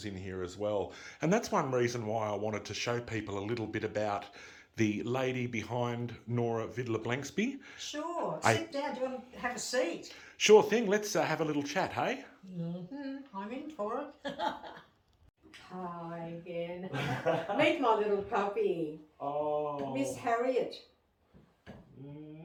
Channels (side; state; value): both; identical; correlation 1.00